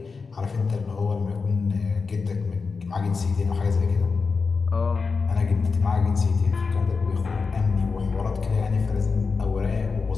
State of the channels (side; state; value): right; quieter; 4.7 dB